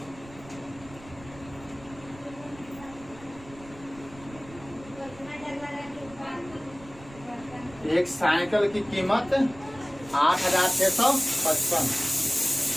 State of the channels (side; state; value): right; noise; rumble, 19 dB below the sound